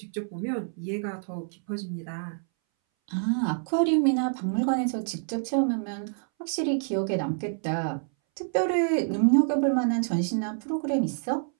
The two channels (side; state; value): left; silent; 60 dB below the other